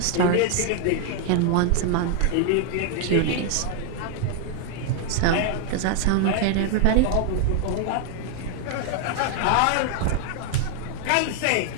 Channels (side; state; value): both; different; correlation 0.00